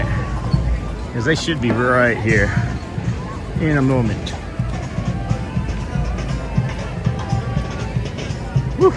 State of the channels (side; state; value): both; identical; correlation 1.00